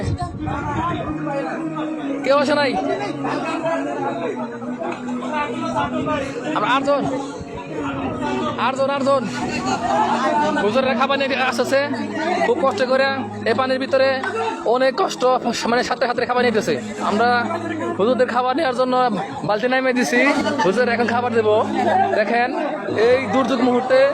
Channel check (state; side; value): identical; both; correlation 1.00